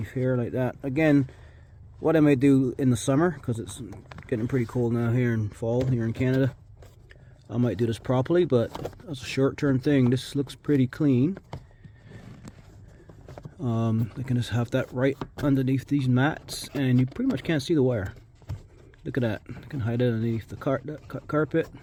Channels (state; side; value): identical; both; correlation 1.00